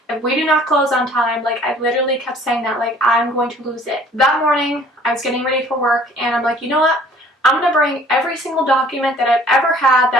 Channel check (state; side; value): normal; both; correlation 0.54